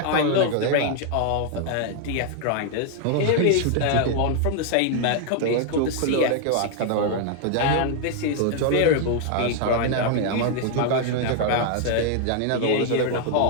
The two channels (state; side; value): different; both; correlation 0.00